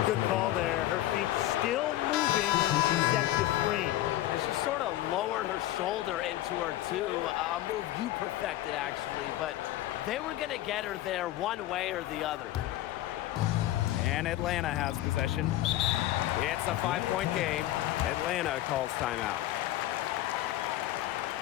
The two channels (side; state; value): right; quieter; 14.7 dB